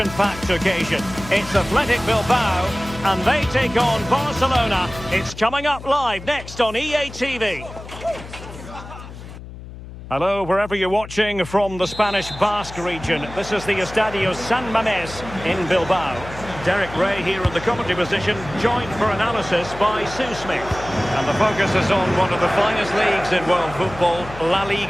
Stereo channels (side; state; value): left; noise; hum, 14 dB below the sound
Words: occasion. It's Athletic Bilbao and they take on Barcelona. It's coming up live next on EA TV. Hello, wherever you're watching from the Spanish Basque region. This is the Estadio San Mamés in Bilbao. Derek Ray here in the commentary position, joined for analysis by Sue Smith. And the focus is on one of the finest leagues in world football, La